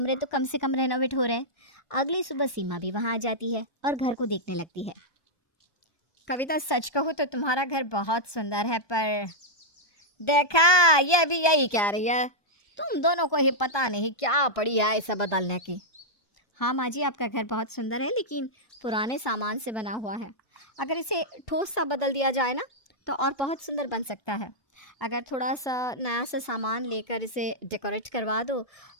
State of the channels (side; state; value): right; late; 1.2 ms